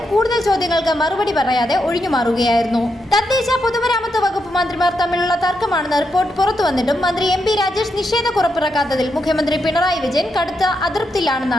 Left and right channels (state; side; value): normal; both; correlation 0.82